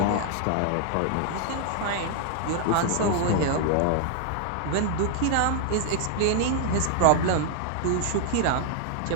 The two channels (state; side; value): different; both; correlation 0.00